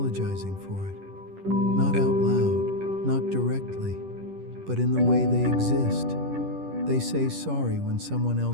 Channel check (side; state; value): left; late; 10 ms